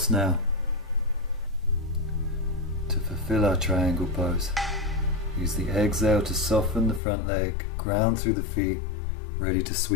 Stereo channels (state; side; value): drops out; right; at 7.0 s